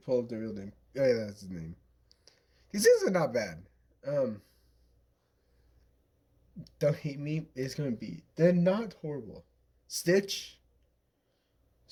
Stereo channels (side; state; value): both; identical; correlation 1.00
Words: up the real name. Oh yeah, that's his name. These things are not bad. Um, don't hate me. It's gonna be. They're not horrible. Stitch.